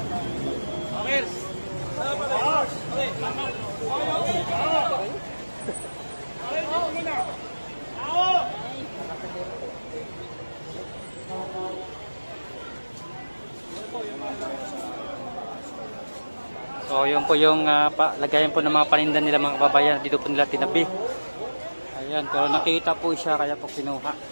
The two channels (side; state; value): both; inverted; correlation -1.00